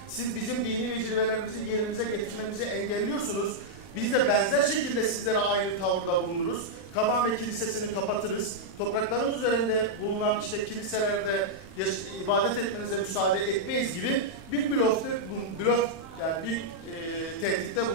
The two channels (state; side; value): late; right; 31 ms